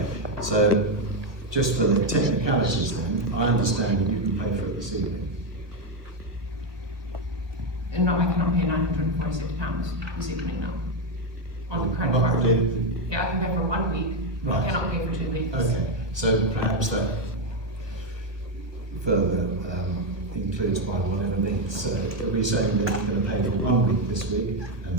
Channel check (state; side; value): late; left; 1.2 ms